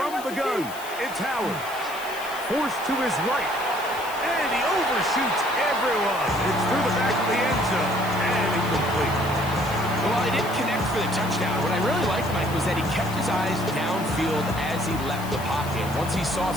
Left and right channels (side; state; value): left; noise; hiss, 14 dB below the sound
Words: the gun, it's Howard. Forced to his right. And he overshoots everyone. It's through the back of the end zone. And incomplete. Well, he didn't connect for the touchdown. What I really liked, Mike, was that he kept his eyes downfield as he left the pocket. Once he saw